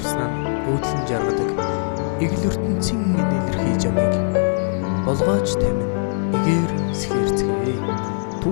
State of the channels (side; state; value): right; silent; digital silence